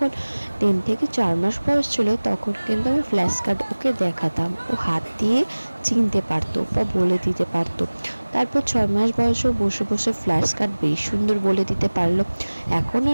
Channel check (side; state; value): both; inverted; correlation -1.00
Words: 3 থেকে 4 মাস বয়স ছিল তখন কিন্তু আমি ফ্ল্যাশ কার্ড ওকে দেখাতাম, ও হাত দিয়ে চিনতে পারতো বা বলে দিতে পারতো। তারপর 6 মাস বয়সে বসে বসে ফ্ল্যাশ কার্ড বেশ সুন্দর বলে দিতে পারলো। এখন